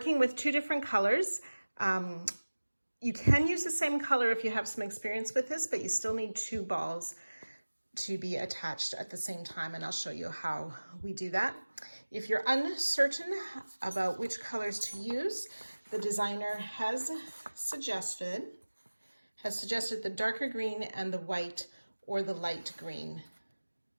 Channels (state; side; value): inverted; both; correlation -1.00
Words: with two different colors. You can use the same color if you have some experience with this, but you still need two balls to be attached at the same time, and I'll show you how we do that. If you're uncertain about which colors to use, the designer has suggested the darker green and the white or the light green,